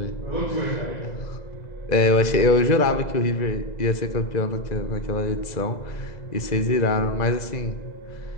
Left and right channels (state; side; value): late; right; 2.0 ms